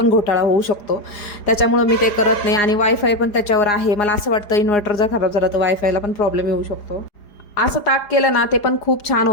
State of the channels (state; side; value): late; right; 4.9 ms